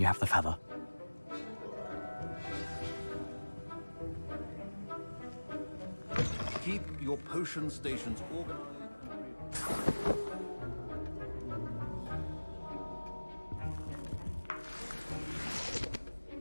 you have the feather. Keep your potion stations organized.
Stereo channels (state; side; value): inverted; both; correlation -1.00